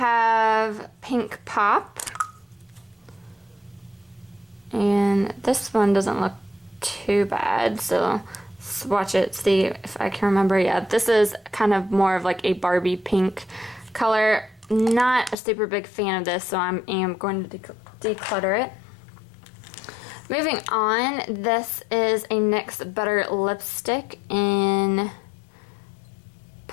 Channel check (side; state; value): right; drops out; at 15.4 s